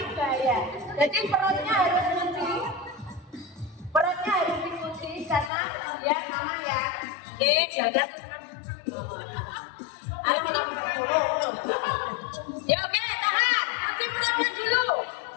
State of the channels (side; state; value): right; drops out; at 5.5 s